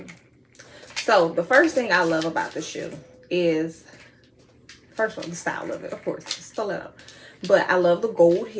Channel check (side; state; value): both; identical; correlation 1.00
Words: So the first thing I love about the shoe is, first of all, the style of it, of course, stiletto. But I love the gold